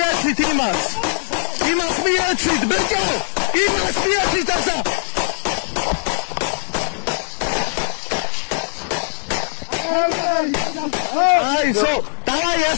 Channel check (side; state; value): right; silent; 66 dB below the other